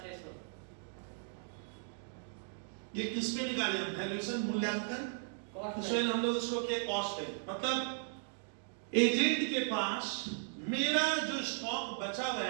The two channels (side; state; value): left; silent; digital silence